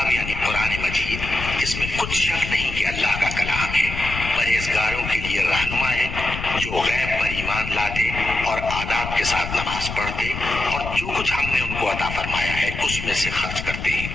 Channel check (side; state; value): left; noise; rumble, 7 dB below the sound